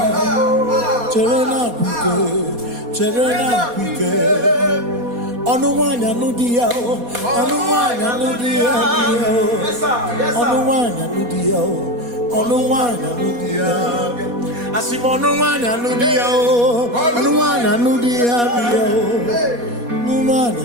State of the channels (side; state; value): left; late; 4.2 ms